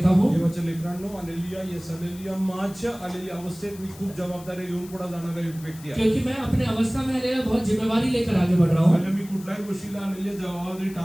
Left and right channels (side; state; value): left; noise; hiss, 20 dB below the sound